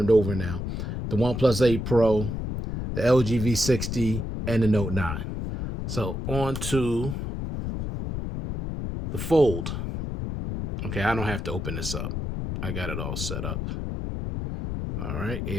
over now. The OnePlus 8 Pro, the LG V60, and the Note 9. So on to the Fold. Okay, I don't have to open this up. I got it all set up. All right,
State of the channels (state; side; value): noise; left; rumble, 4 dB below the sound